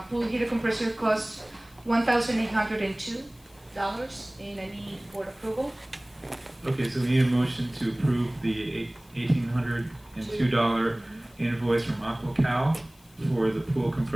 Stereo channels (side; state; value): left; noise; hiss, 28 dB below the sound